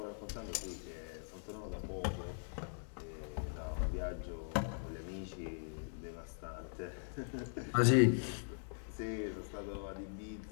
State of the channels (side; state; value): right; silent; digital silence